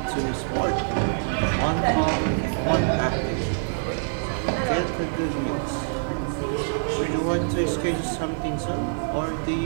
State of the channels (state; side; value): silent; left; 55 dB below the other